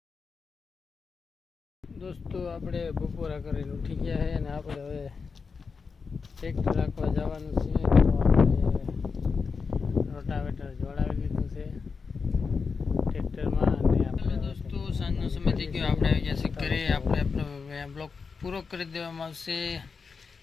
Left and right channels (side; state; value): right; quieter; 5.1 dB